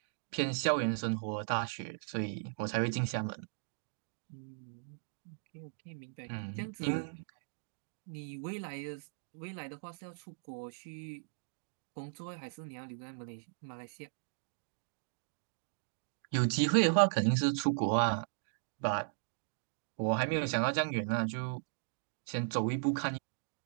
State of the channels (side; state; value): left; silent; digital silence